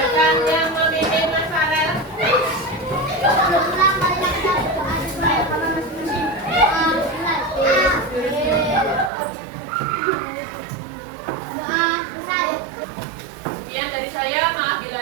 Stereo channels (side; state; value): left; drops out; at 9.1 s